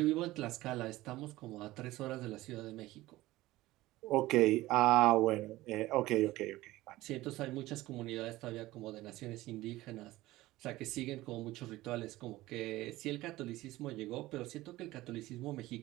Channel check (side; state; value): left; quieter; 17.6 dB